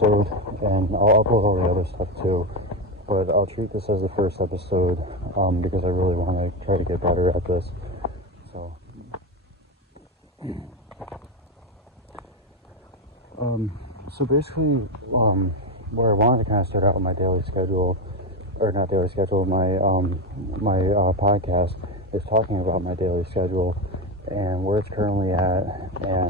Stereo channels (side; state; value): both; normal; correlation 0.13